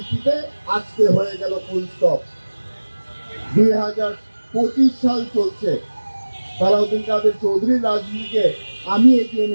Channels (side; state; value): both; inverted; correlation -1.00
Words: আজকে হয়ে গেল ফুল স্টপ। 2025 সাল চলছে, সালাউদ্দিন কাদের চৌধুরীর রাজনীতিকে আমি এগিয়ে